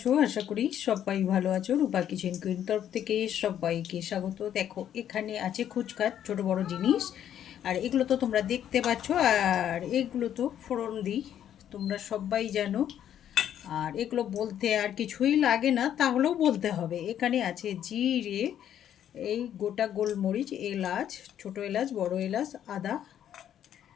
আশা করি সবাই ভালো আছো। রূপা কিচেন কুইন তরফ থেকে সবাইকে স্বাগত। দেখো, এখানে আছে খুচখাচ ছোট বড় জিনিস, আর এগুলো তো তোমরা দেখতে পাচ্ছ। আর এগুলো তো ফোড়ন দিই, তোমরা সবাই জানো। আর এগুলো বলতে আর কিছুই লাগে না, তাহলেও বলতে হবে। এখানে আছে জিরে, এই গোটা গোলমরিচ, এলাচ, ছোট এলাচ, বড় এলাচ, আদা।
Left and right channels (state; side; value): quieter; right; 10.3 dB